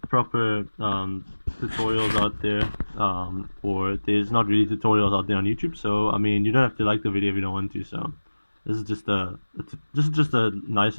proper tutorials out there, or there's not really tutorials out there on YouTube. So I mean, you don't have to like the video if you don't want to. So this is just a nice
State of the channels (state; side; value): inverted; both; correlation -1.00